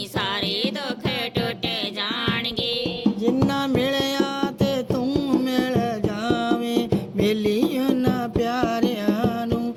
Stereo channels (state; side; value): identical; both; correlation 1.00